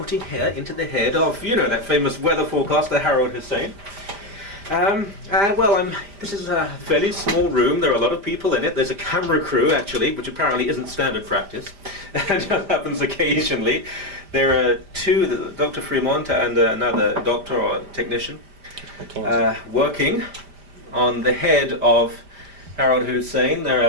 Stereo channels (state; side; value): late; left; 5.0 ms